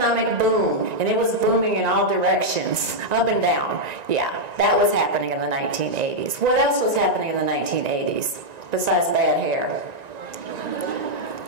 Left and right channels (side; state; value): left; late; 1.9 ms